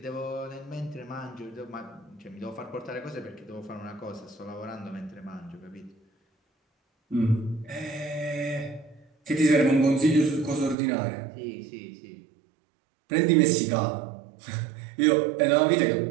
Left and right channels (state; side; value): drops out; left; at 10.8 s